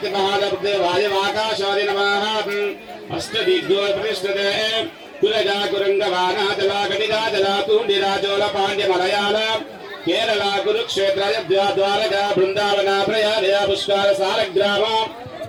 नमः अष्टदिग्गो प्रतिष्ठते कुलजा कुरंगवाना जला गणिगा जला तूंडिरा चोल पांड्य मलयाल केरला कुरुक्षेत्र द्वारका वृंदावन प्रयाग पुष्कर सालग्राम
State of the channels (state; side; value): identical; both; correlation 1.00